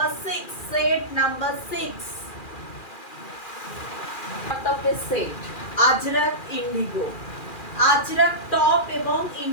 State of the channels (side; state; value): right; late; 2.4 ms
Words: 6, সেট নাম্বার 6 টপের set Ajrak Indigo, Ajrak top এবং